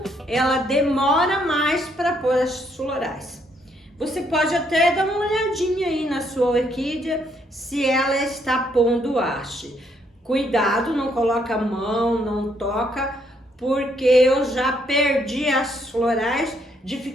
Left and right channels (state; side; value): normal; both; correlation 0.71